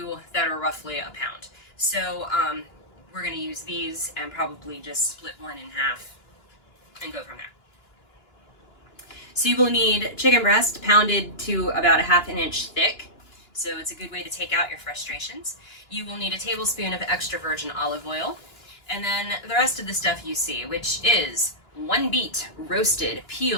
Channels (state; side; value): late; right; 2.9 ms